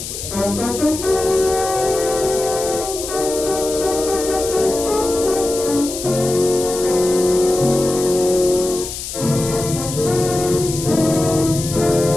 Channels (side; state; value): left; noise; hiss, 8 dB below the sound